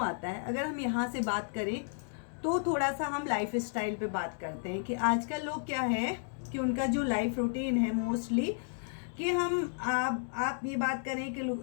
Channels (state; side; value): silent; right; digital silence